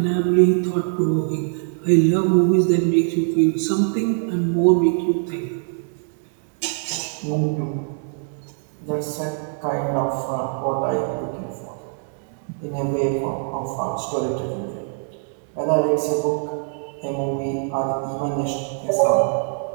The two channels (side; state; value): left; silent; digital silence